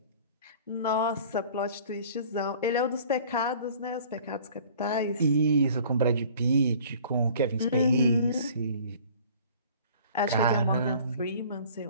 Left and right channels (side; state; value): both; inverted; correlation -0.50